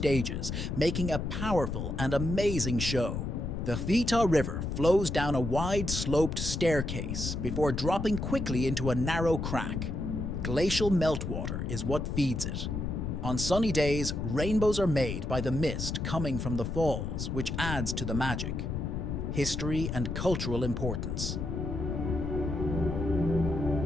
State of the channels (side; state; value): left; noise; rumble, 3 dB below the sound